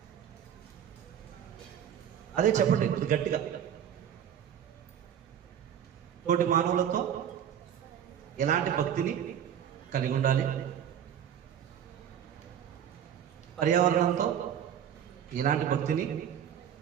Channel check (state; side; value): quieter; left; 9.3 dB